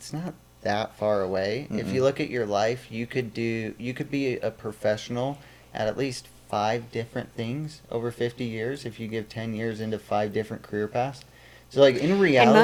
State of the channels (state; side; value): identical; both; correlation 1.00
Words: not that far away. If you look at your life, you could be a professional at least 5 different things over 50 years if you give 10 years into 5 different career paths. So like in reality, And